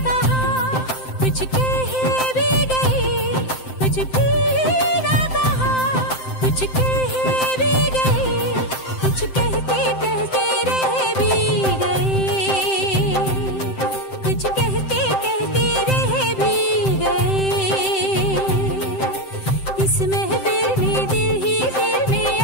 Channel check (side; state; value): right; late; 7.7 ms